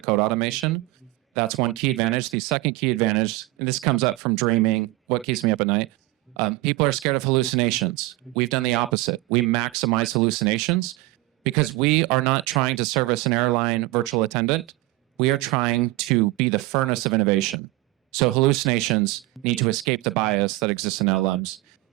code automation. That's one key advantage. The second key advantage, and this comes up from dreaming, what keeps me up at night, people are scared of hallucinations. We've done the opposite. We maximize hallucinations because we are not trying to service an airline virtual attendant. We are trying to be the furnace of innovation. So hallucinations need to escape the bias that exists in LLMs.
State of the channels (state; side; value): quieter; left; 19.9 dB